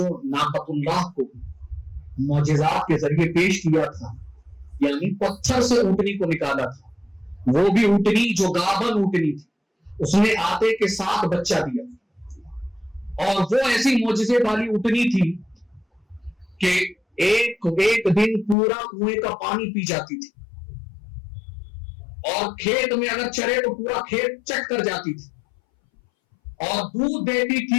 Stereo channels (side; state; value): right; drops out; at 18.6 s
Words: ناقۃ اللہ کو معجزات کے ذریعے پیش کیا تھا، یعنی پتھر سے اونٹنی کو نکالا تھا، وہ بھی اونٹنی جو گابن اونٹنی تھی، اس نے آتے کے ساتھ بچہ دیا، اور وہ ایسی معجزے والی اونٹنی تھی کہ ایک دن پورا کنویں کا پانی پی جاتی تھی، اور کھیت میں اگر چرے تو پورا کھیت چٹ کر جاتی تھی، اور دودھ دیتی